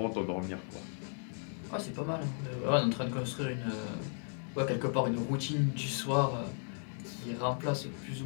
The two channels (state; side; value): silent; right; 54 dB below the other